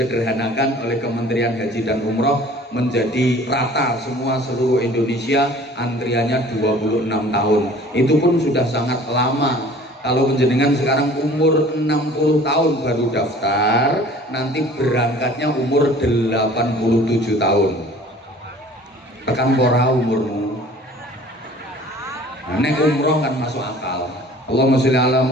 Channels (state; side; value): normal; both; correlation 0.49